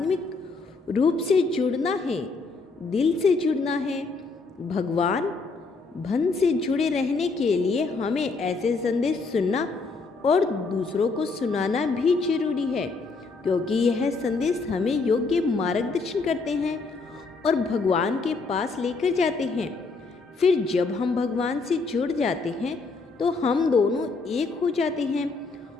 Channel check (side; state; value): right; quieter; 4.1 dB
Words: रूप से जुड़ना है, दिल से जुड़ना है। भगवान भन से जुड़े रहने के लिए हमें ऐसे संदेश सुनना और दूसरों को सुनाना भी जरूरी है, क्योंकि यह संदेश हमें योग्य मार्गदर्शन करते हैं और भगवान के पास लेकर जाते हैं। फिर जब हम भगवान से जुड़ जाते हैं तो हम दोनों एक हो जाते हैं